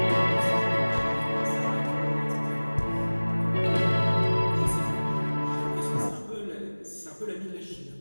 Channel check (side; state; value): both; inverted; correlation -1.00